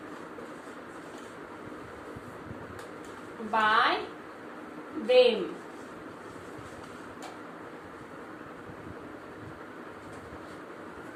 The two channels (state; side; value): identical; both; correlation 1.00